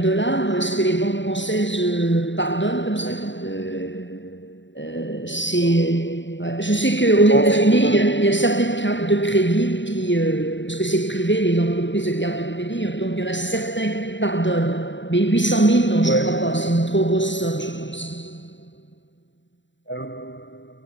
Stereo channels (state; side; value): late; right; 0.54 ms